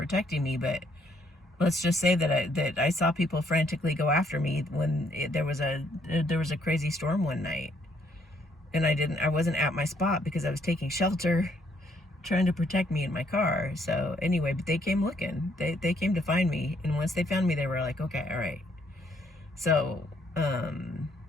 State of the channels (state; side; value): normal; both; correlation 0.69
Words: me. But let's just say that I saw people frantically go after me when there was a crazy storm one night. And I wasn't at my spot because I was taking shelter, trying to protect me in my car. So anyway, but they came looking. They came to find me. And once they found me, they were like, okay, all right. So,